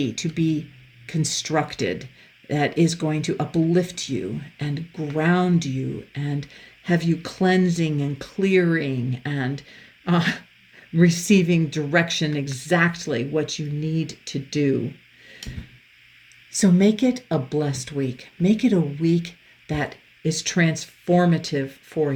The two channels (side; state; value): both; identical; correlation 1.00